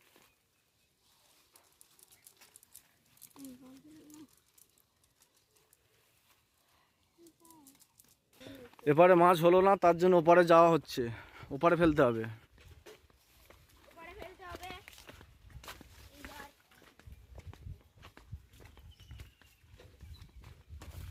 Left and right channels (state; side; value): identical; both; correlation 1.00